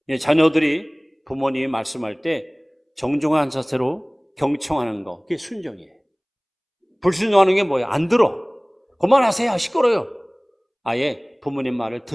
자녀들이 부모님이 말씀할 때 정중한 자세로 경청하는 거, 그게 순종이에요. 불순종하는 게 뭐예요? 안 들어. 그만하세요. 시끄러워요. 아예 부모님 말을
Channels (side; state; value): both; identical; correlation 1.00